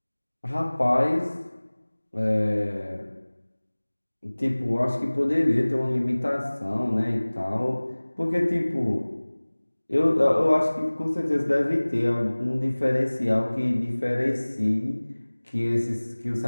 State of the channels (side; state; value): both; inverted; correlation -1.00